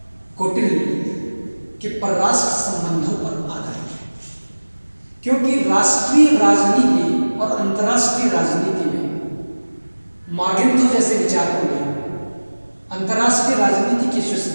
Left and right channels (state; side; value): inverted; both; correlation -1.00